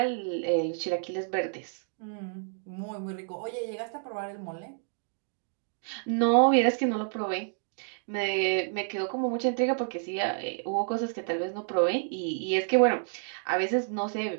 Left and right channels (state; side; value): silent; left; digital silence